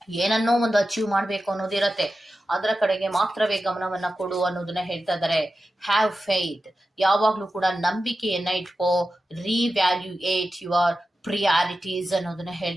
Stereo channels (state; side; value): normal; both; correlation 0.92